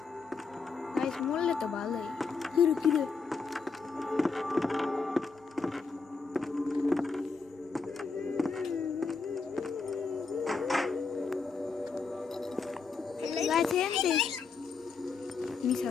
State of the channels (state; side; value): quieter; right; 4.7 dB